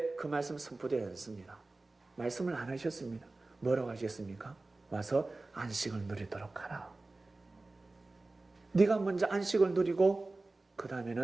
그 말씀 선포되지 않습니다. 말씀을 안 하셨습니다. 뭐라고 하셨습니까? 와서 안식을 누리도록 하라. 네가 먼저 안식을 누리고 그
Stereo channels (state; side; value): quieter; left; 3.2 dB